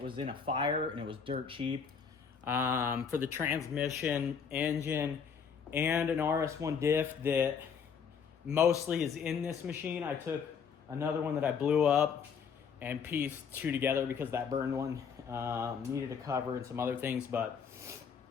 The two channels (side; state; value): right; quieter; 6.6 dB